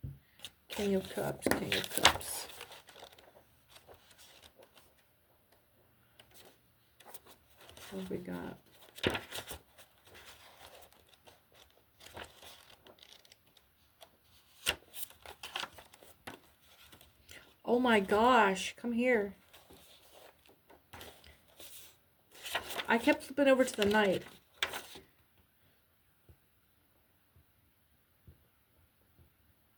King of Cups. King of Cups. What have we got? Oh my gosh, come here. I kept flipping over to the Knight.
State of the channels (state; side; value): identical; both; correlation 1.00